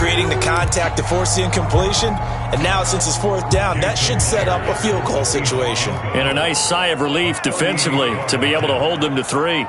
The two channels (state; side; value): identical; both; correlation 1.00